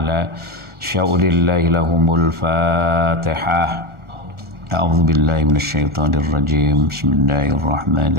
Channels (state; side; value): late; left; 1.4 ms